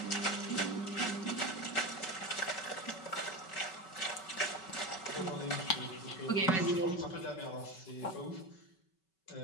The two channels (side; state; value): right; late; 5.3 ms